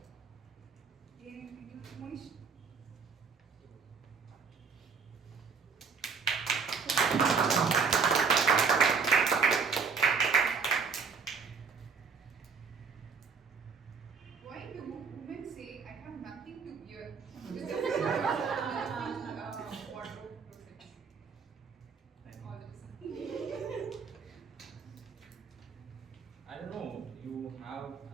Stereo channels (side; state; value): left; quieter; 5.6 dB